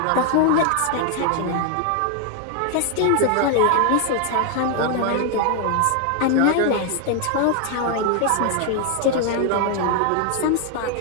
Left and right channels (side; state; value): both; different; correlation 0.00